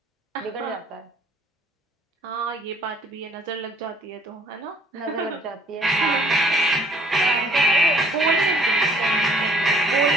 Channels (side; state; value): both; normal; correlation 0.58